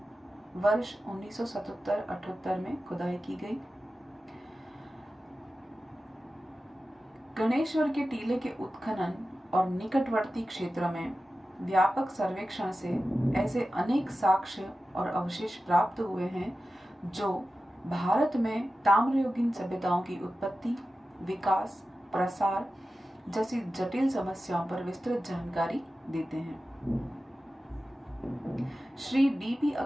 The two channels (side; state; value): both; normal; correlation 0.94